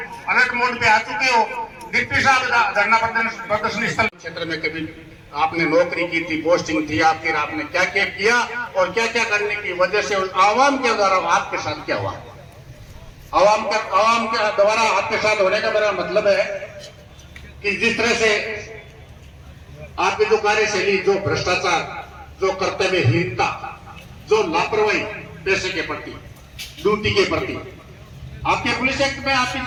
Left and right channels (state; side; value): identical; both; correlation 1.00